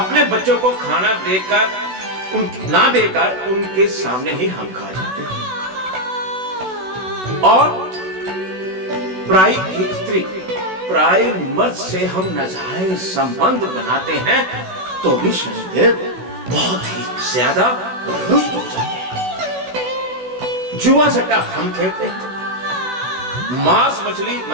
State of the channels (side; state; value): left; late; 16 ms